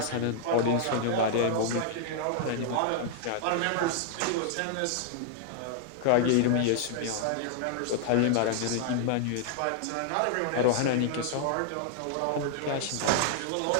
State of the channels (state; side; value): different; both; correlation -0.01